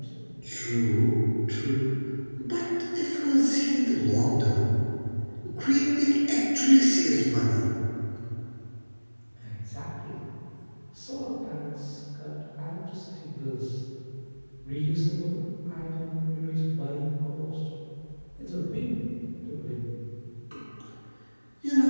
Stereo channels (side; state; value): both; inverted; correlation -1.00